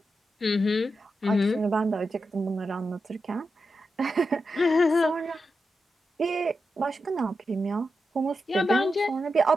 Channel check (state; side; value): normal; both; correlation 0.88